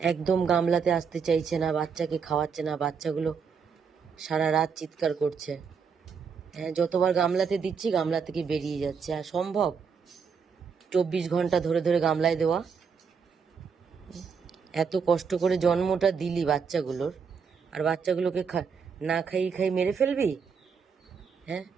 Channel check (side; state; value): left; quieter; 6.1 dB